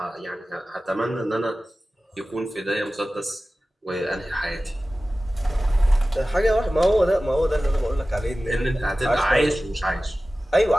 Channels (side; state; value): both; normal; correlation 0.96